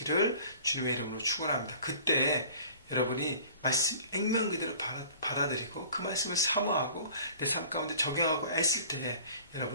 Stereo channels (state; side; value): inverted; both; correlation -0.47